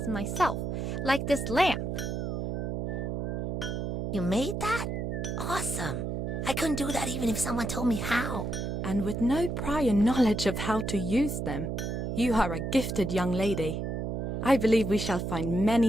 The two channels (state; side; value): noise; right; hum, 2 dB below the sound